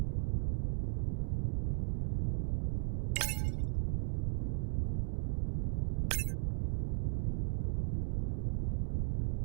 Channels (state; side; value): silent; left; digital silence